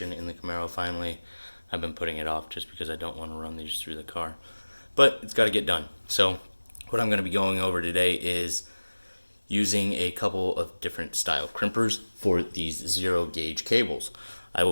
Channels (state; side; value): inverted; both; correlation -1.00